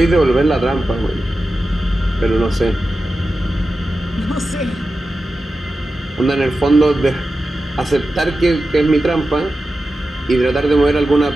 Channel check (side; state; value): both; normal; correlation 0.92